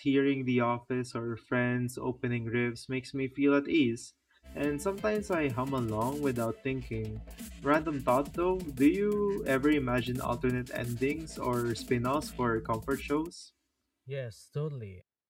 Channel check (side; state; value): both; identical; correlation 1.00